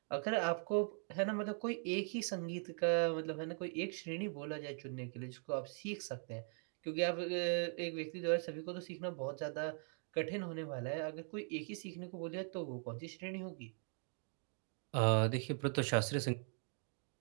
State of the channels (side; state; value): left; silent; 50 dB below the other